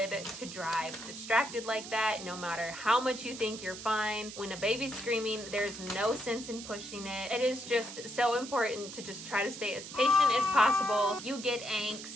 to drive distracted like that, no matter how much you think you're fine. When a baby's screaming, there's no sense in pushing it. It is just so important to just try to stay as patient as possible. You get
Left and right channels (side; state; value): right; noise; hiss, 11 dB below the sound